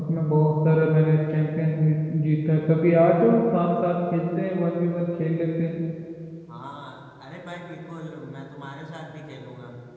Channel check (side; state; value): both; identical; correlation 1.00